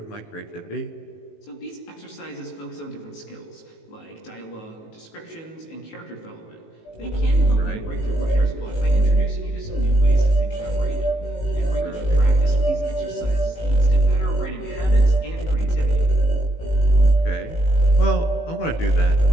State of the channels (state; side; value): late; right; 18 ms